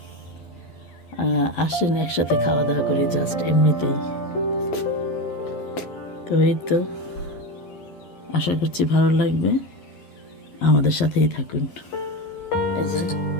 আসেন একসাথে খাওয়া দাওয়া করি, জাস্ট এমনিতেই। তো এই তো, আশা করছি ভালো লাগবে, আমাদের সাথেই থাকুন। এই যে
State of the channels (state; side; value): late; right; 12 ms